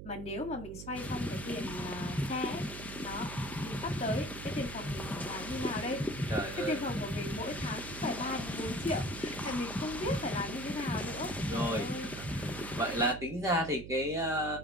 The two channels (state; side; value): noise; right; hum, 11 dB below the sound